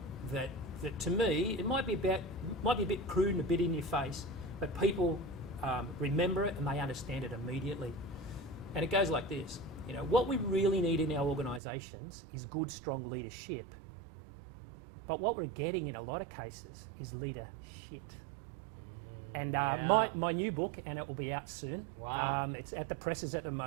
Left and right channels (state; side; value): drops out; left; at 11.6 s